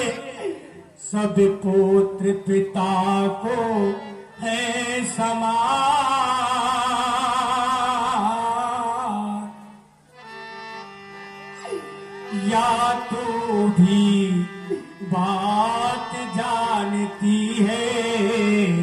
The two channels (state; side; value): identical; both; correlation 1.00